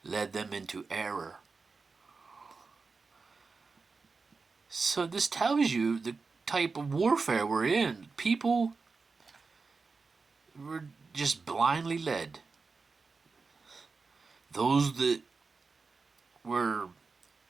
led them into error. So this tells you the type of warfare we're in. People were just blindly led. Those that were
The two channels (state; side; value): quieter; left; 4.4 dB